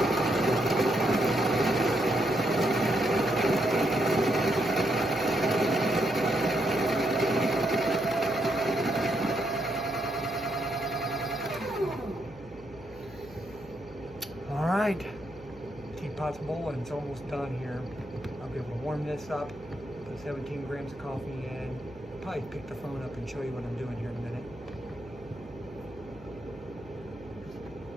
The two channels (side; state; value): left; noise; hum, 19 dB below the sound